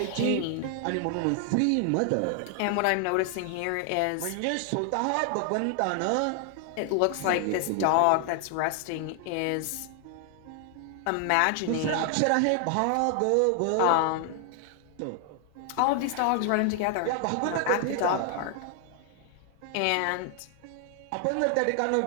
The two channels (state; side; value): different; both; correlation 0.00